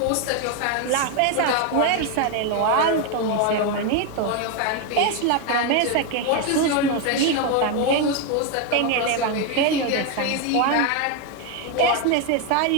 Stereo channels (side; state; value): both; different; correlation 0.01